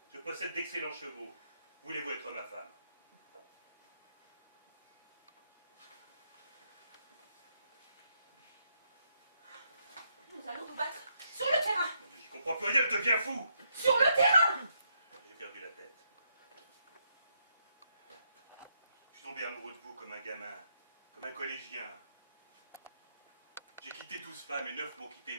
Je possède d'excellents chevaux. Voulez-vous être ma femme? Nous allons nous battre sur le terrain. Mon Dieu, j'y comprends plus rien, je deviens fou. Sur le terrain. J'ai perdu la tête. Je suis tombé amoureux de vous comme un gamin, comme un collégien. J'ai quitté 12 femmes et 9 m'ont quitté,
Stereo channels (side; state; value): both; inverted; correlation -0.77